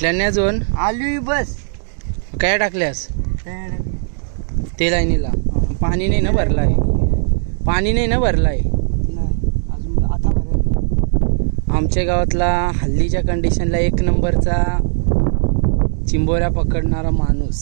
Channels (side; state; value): left; silent; digital silence